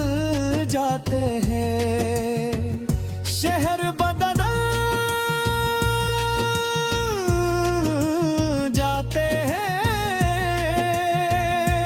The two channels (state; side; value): identical; both; correlation 1.00